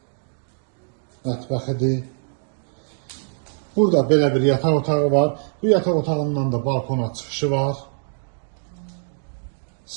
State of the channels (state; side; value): silent; left; digital silence